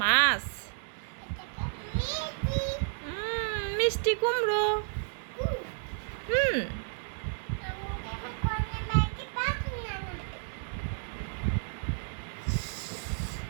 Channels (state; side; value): silent; left; digital silence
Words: মাছ। মিষ্টি কুমড়ো। হুম।